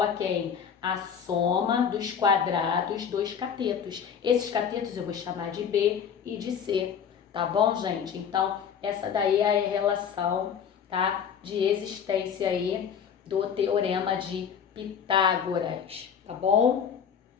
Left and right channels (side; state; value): right; quieter; 7.6 dB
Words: a quem? A soma dos quadrados dos catetos. Esses catetos eu vou chamar de B e de C, tá bom, gente? Então, essa daí é a relação, tá? De existência aí do Teorema de Pitágoras, tá bom?